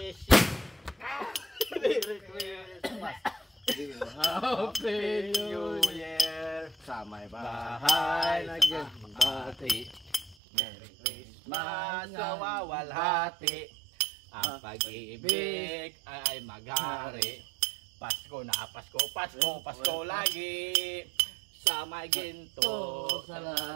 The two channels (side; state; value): left; drops out; at 10.4 s